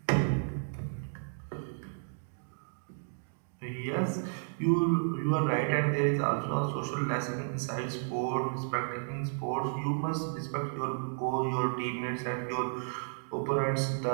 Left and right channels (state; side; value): silent; left; digital silence